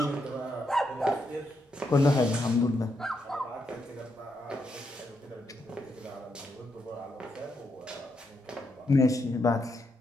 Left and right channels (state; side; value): normal; both; correlation 0.80